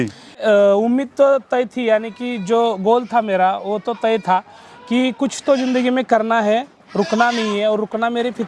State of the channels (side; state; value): both; identical; correlation 1.00